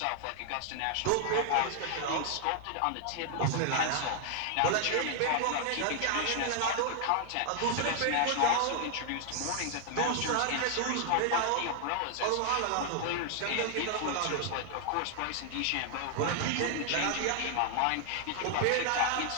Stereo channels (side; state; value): both; different; correlation 0.00